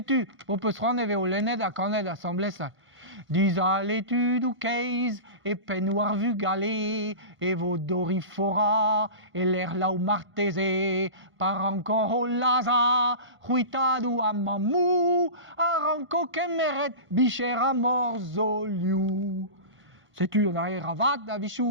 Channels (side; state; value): left; late; 1.5 ms